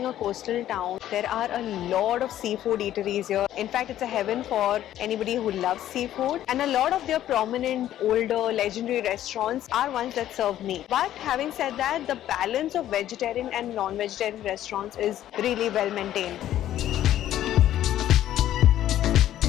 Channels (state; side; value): quieter; right; 12.4 dB